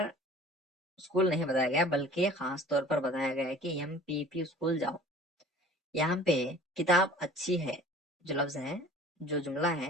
اسکول نہیں بتایا گیا بلکہ خاص طور پر بتایا گیا ہے کہ MPP اسکول جاؤ۔ یہاں پہ کتاب اچھی ہے جو لفظ ہے، جو جملہ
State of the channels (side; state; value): both; normal; correlation 0.47